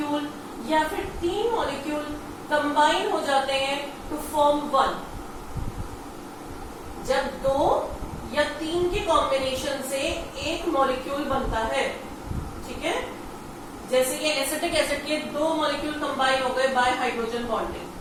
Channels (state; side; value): identical; both; correlation 1.00